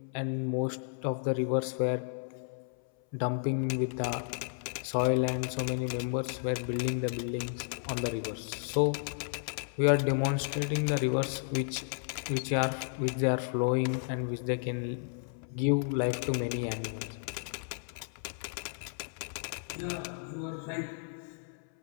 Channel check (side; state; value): right; silent; 56 dB below the other